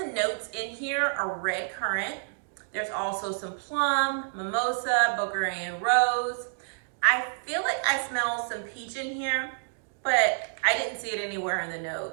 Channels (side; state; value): left; silent; digital silence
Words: notes in here are red currant. There's also some plum, mimosa, Bulgarian rose. I feel like I smell some peach in here, but I didn't see it anywhere in the